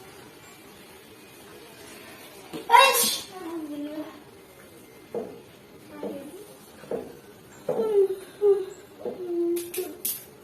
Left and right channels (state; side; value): identical; both; correlation 1.00